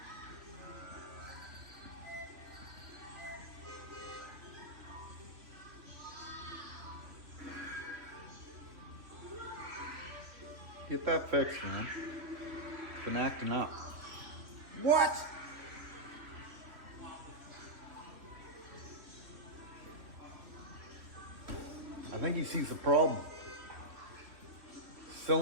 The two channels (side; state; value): left; late; 2.9 ms